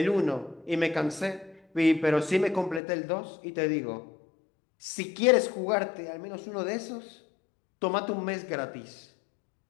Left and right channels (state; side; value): drops out; right; at 2.8 s